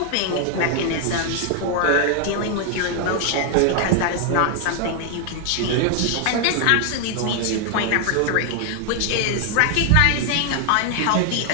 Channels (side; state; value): both; different; correlation 0.00